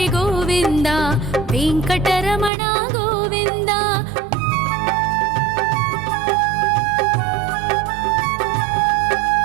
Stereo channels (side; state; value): left; drops out; at 2.5 s